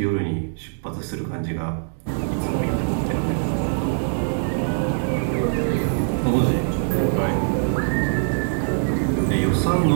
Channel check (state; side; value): silent; left; digital silence